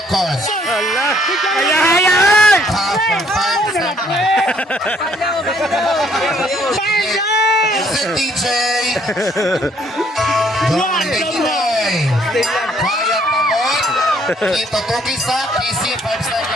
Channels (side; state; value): both; normal; correlation 0.65